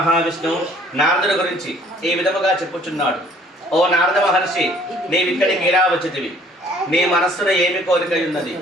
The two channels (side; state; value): both; normal; correlation 0.57